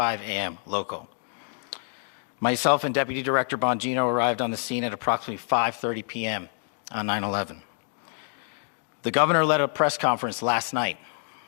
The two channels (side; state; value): right; silent; 60 dB below the other